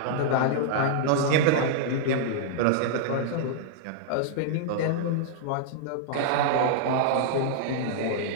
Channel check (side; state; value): both; different; correlation -0.01